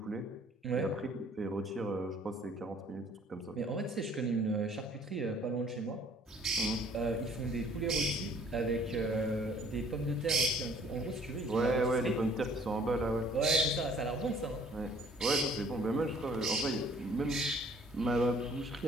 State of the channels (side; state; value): both; normal; correlation 0.57